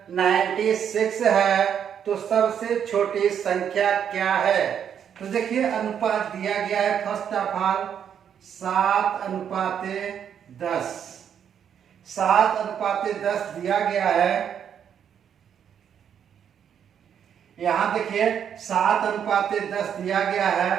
96 है तो सबसे छोटी संख्या क्या है? तो देखिए अनुपात दिया गया है फर्स्ट ऑफ ऑल 7:10। 7:10 दिया गया है। यहाँ देखिए 7:10 दिया गया है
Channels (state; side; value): quieter; left; 8.5 dB